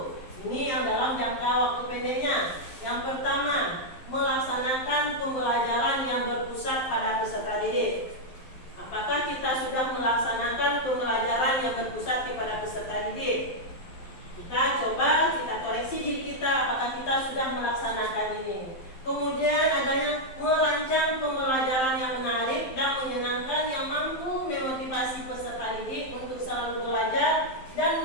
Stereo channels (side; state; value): right; late; 12 ms